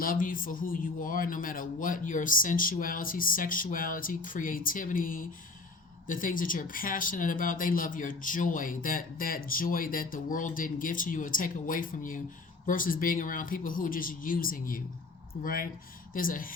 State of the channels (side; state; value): right; quieter; 3.7 dB